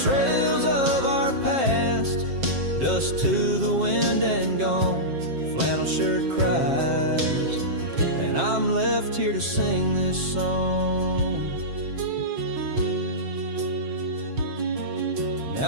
of our past, dust to the wind and gone. Flannel shirt cries, and I'm left here to sing this song.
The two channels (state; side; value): late; left; 7.5 ms